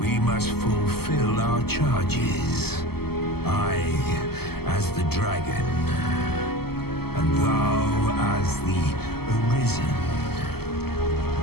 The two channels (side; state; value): right; late; 0.96 ms